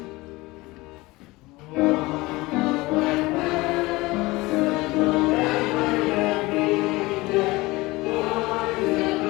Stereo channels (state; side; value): quieter; right; 21.3 dB